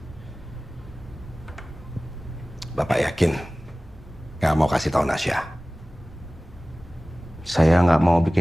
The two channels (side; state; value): both; normal; correlation 0.98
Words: Bapak yakin nggak mau kasih tahu Nasya? Saya nggak mau